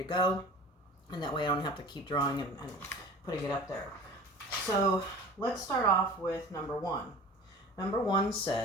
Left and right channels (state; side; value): normal; both; correlation 0.40